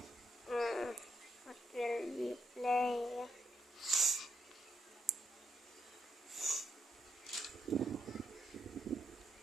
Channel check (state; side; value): normal; both; correlation 0.80